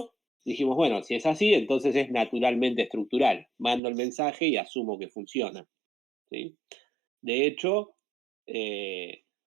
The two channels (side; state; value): left; drops out; at 3.8 s